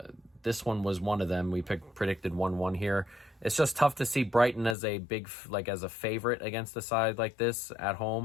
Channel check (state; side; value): drops out; right; at 4.8 s